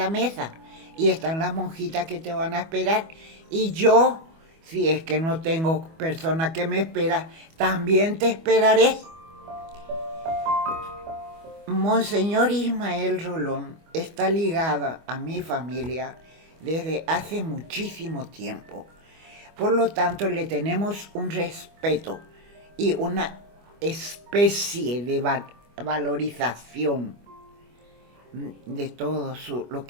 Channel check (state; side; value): late; left; 25 ms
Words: mesa. Y están las monjitas que te van a esperar. Y yo, si es que no tengo persona que me espera, también te esperaré. Monseñor Ismael Rolón está ligada a mi familia desde hace muchísimo tiempo. Por lo tanto, le tenemos un respeto y una especie de valorización de todo lo